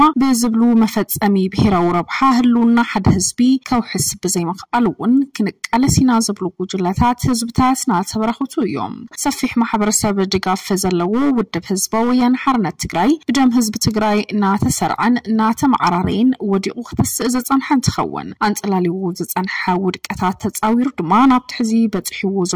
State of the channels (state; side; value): identical; both; correlation 1.00